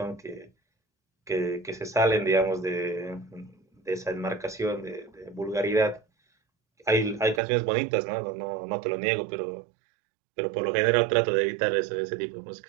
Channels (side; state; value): left; drops out; at 7.4 s